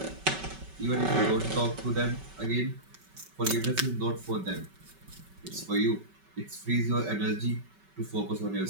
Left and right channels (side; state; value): left; late; 5.2 ms